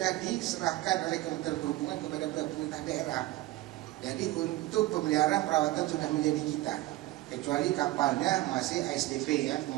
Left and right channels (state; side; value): quieter; left; 17.6 dB